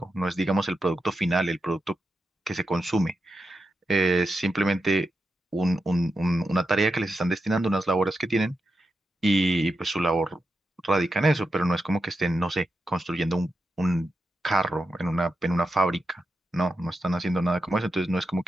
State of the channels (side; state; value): both; normal; correlation 0.88